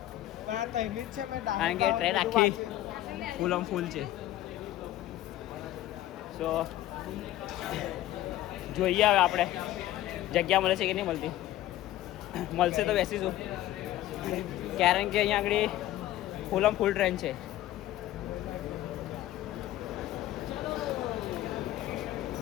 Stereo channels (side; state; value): right; quieter; 14.4 dB